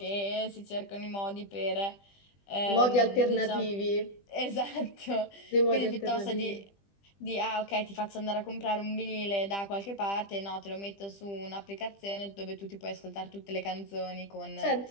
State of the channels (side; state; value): right; late; 20 ms